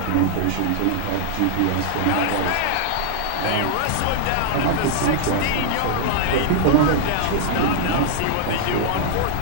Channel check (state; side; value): different; both; correlation 0.00